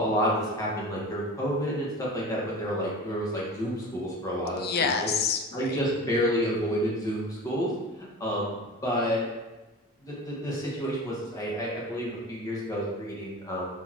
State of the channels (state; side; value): normal; both; correlation 0.34